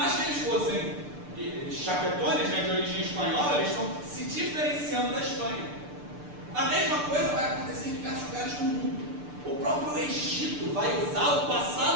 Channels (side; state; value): left; late; 6.8 ms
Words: que eles fossem chapetones, de origem espanhola, eles estão se diferenciando da Espanha. A mesma coisa vai acontecer em diversos lugares do mundo. O próprio Egito vai usar o